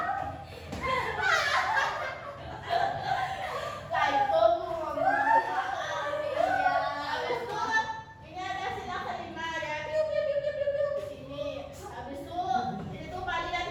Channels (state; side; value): identical; both; correlation 1.00